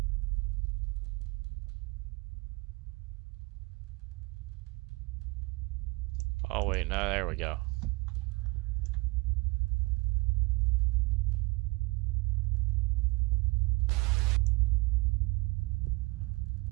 Oh wait, no, there we go.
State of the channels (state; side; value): quieter; left; 24.8 dB